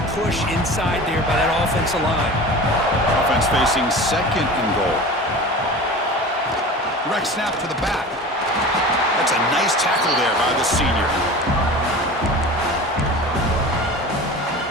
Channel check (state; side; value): normal; both; correlation 0.35